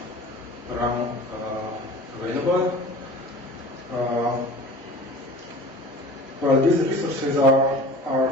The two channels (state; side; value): normal; both; correlation 0.41